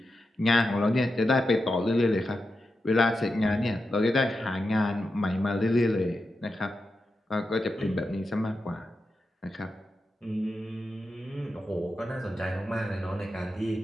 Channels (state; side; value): normal; both; correlation 0.89